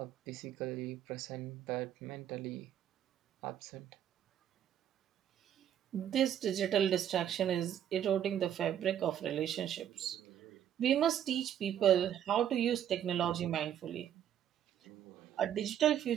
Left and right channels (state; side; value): quieter; left; 10.1 dB